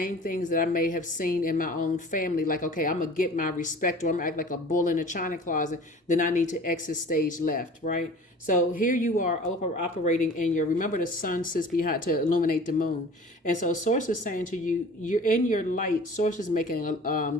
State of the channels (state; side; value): normal; both; correlation 0.43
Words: things that I may have seen in my own family. Like, okay, I'm going to get my respect, or I'm going to act like a bull in a china closet. Then I need to exit stage left, right? So here you are operating in remember the sun sits behind to illuminate the moon. And so Source is saying to you, you're in your light. Source is